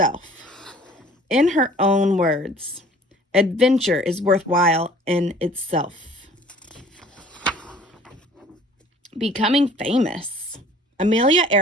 In her own words, adventure is worthwhile in itself. Becoming famous. Amelia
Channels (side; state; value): both; normal; correlation 0.51